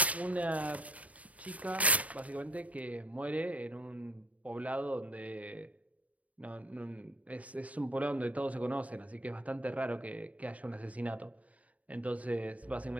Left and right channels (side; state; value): left; late; 0.069 ms